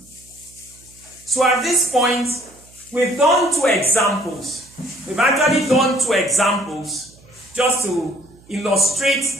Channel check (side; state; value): right; noise; hum, 27 dB below the sound